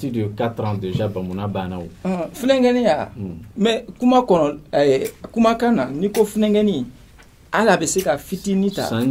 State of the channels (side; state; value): both; identical; correlation 1.00